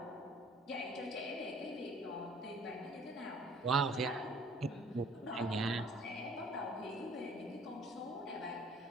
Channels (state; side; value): normal; both; correlation 0.54